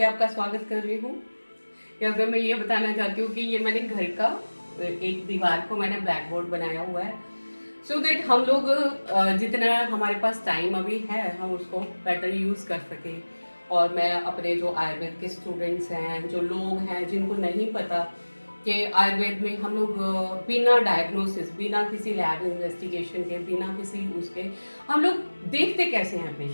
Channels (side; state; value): both; inverted; correlation -1.00